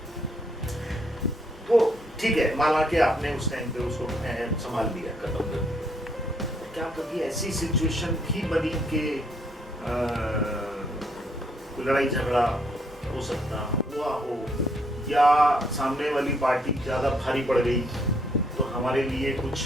तो ठीक है, माना कि आपने उस टाइम पे उसको संभाल लिया, खत्म कर दिया, क्या कभी ऐसी सिचुएशन भी बनी कि कोई लड़ाई झगड़ा हो सकता हुआ हो या सामने वाली पार्टी ज्यादा भारी पड़ गई तो हमारे लिए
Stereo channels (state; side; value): normal; both; correlation 0.70